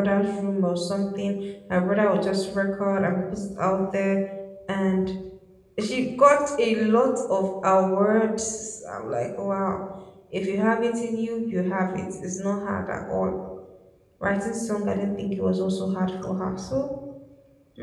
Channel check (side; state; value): both; identical; correlation 1.00